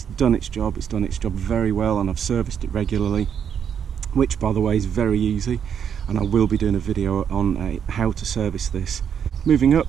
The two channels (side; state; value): left; quieter; 8.0 dB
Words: done its job. It's done its job very well, and I've serviced it regularly, which by the way is very easy, and I will be doing a video on how to service this. Moving up,